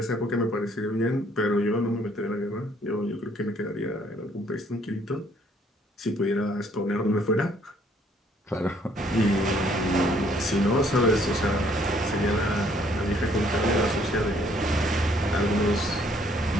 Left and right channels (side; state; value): both; normal; correlation 0.64